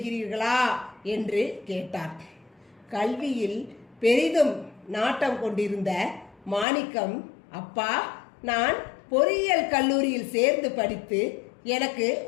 என்று கேட்டார். கல்வியில் பெரிதும் நாட்டம் கொண்டிருந்த மாணிக்கம், அப்பா, நான் பொறியியல் கல்லூரியில் சேர்ந்து படித்து எனக்கு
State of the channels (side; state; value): right; drops out; at 6.7 s